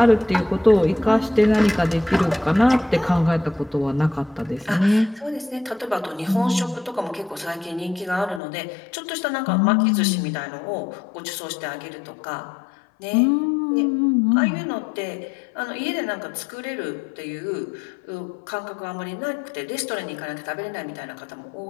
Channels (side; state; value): right; drops out; at 8.4 s